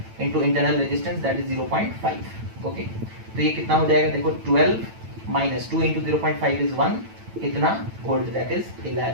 into internal resistance that is 0.5, okay. तो ये कितना हो जाएगा, देखो 12 माइनस 2 इंटू 0.5 इज 1, कितना वोल्ट, दैट इज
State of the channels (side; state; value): left; late; 9.0 ms